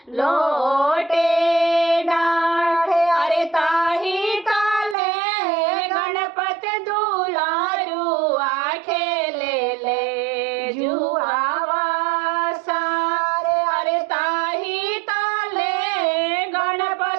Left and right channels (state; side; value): drops out; left; at 5.0 s